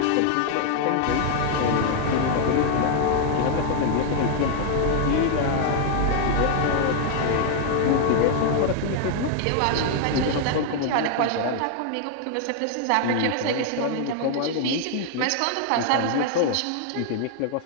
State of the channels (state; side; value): different; both; correlation 0.00